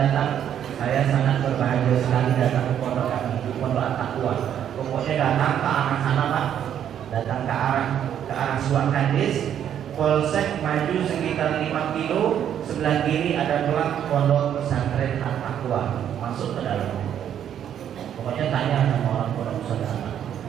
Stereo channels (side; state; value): left; quieter; 9.7 dB